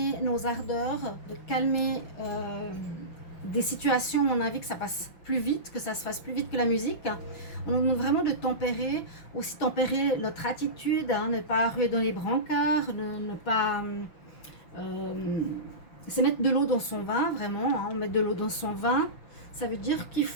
nos ardeurs, de calmer des situations où on a envie que ça passe plus vite, que ça se fasse plus vite que la musique. On a vraiment de tempérer, aussi tempérer notre attitude, hein, ne pas ruer dans les brancards, ne pas... c'est mettre de l'eau dans son vin, vraiment, hein, mettre de l'eau dans son vin. Ça veut dire qu'il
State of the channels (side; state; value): right; late; 5.9 ms